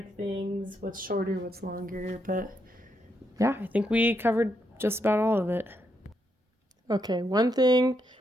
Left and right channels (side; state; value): both; normal; correlation 0.79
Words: things, what's shorter, what's longer. But yeah, I think we covered just about all of it. Okay, one